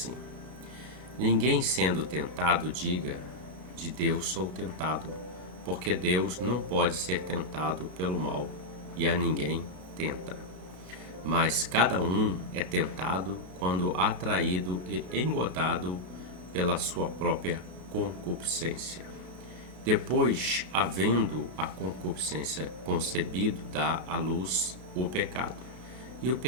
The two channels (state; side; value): late; left; 32 ms